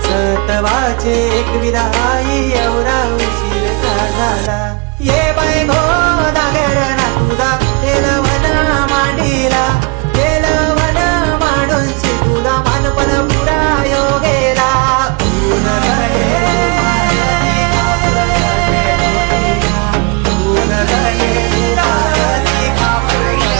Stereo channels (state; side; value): quieter; left; 31.2 dB